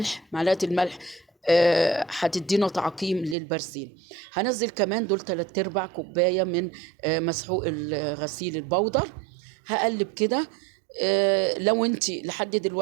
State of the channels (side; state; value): left; drops out; at 3.4 s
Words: معلقة الملح هتدينا تعقيم للبرسيل. هنزل كمان دول 3/4 كوباية من مسحوق الغسيل البودر. هقلب كده. لو انت لحد